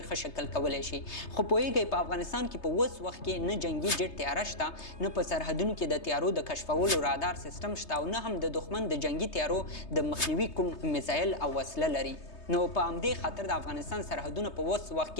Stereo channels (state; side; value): late; right; 3.3 ms